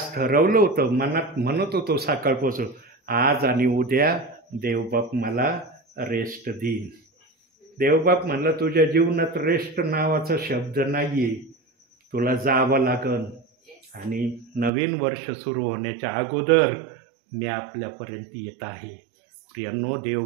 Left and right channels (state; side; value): drops out; left; at 14.7 s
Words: ठरवलं होतं, मनात म्हणत होतो सकाळपासून, आज आणि उद्या देवबाप मला रेस्ट देईन. देवबाप म्हणलं तुझ्या जीवनात रेस्ट नावाचा शब्द नाही आहे, तुला जावं लागन. आणि नवीन वर्ष सुरू होण्याच्या अगोदर मी आपल्यापर्यंत येत आहे. प्रियांनो,